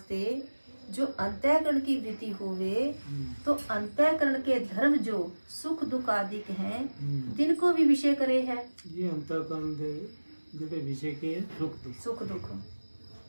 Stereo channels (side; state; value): both; inverted; correlation -1.00